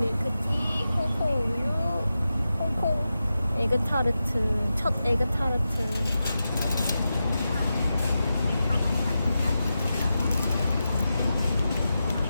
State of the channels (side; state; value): both; inverted; correlation -0.91